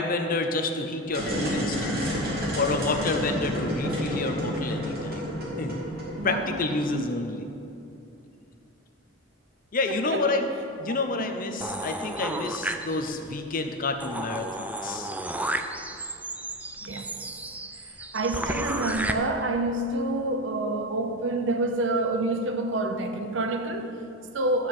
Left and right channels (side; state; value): both; normal; correlation 0.20